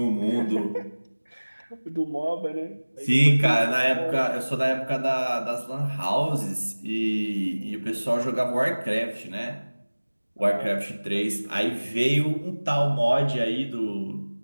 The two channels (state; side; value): inverted; both; correlation -1.00